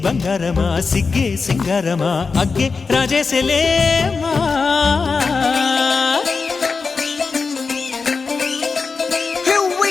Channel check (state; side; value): quieter; right; 4.7 dB